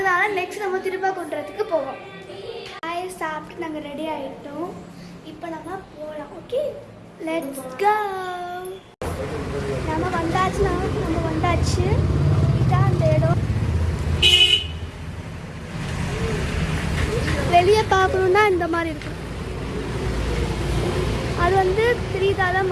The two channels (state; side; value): identical; both; correlation 1.00